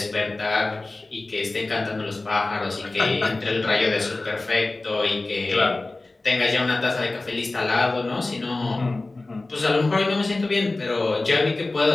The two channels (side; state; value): right; quieter; 3.1 dB